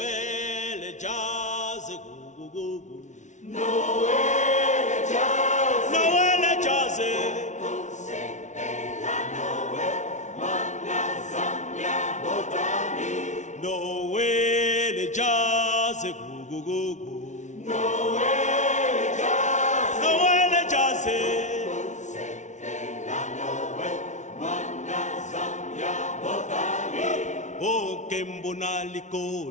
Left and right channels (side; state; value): right; late; 0.35 ms